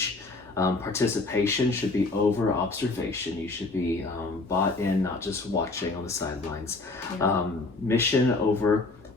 Participation should be over observation. You should be bought in, not just watching on the sidelines. Yeah. Mission over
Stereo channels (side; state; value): right; quieter; 3.4 dB